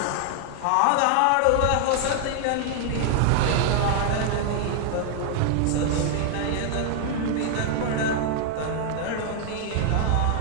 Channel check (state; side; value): different; both; correlation 0.00